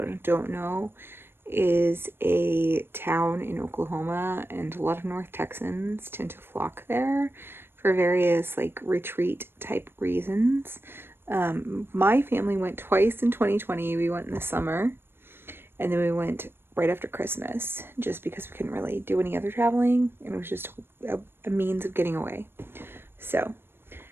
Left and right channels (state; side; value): late; left; 0.11 ms